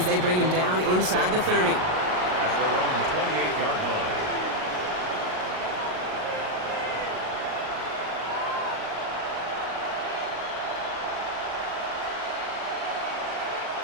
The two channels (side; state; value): left; late; 38 ms